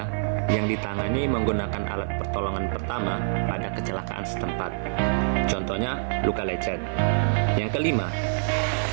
yang ditangani menggunakan alat pertolongan pertama pada kecelakaan setempat. Contohnya, luka lecet. Yang kelima,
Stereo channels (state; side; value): silent; left; digital silence